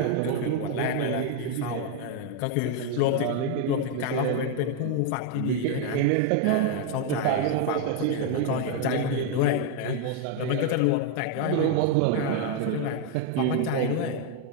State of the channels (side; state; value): both; different; correlation 0.01